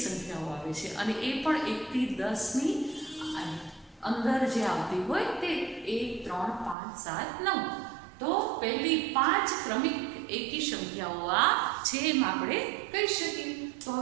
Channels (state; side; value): drops out; left; at 6.8 s